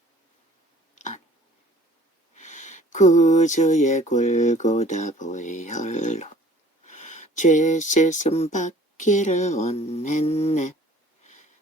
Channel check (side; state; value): both; normal; correlation 0.53